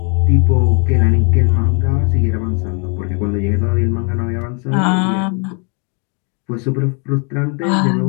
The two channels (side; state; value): right; quieter; 35.6 dB